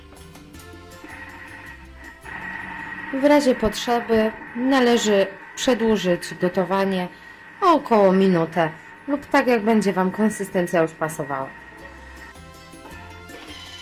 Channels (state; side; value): identical; both; correlation 1.00